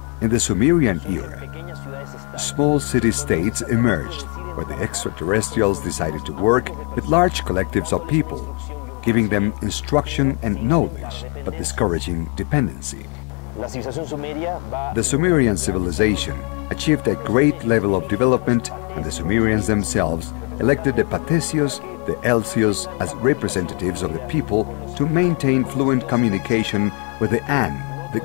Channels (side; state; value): right; quieter; 32.6 dB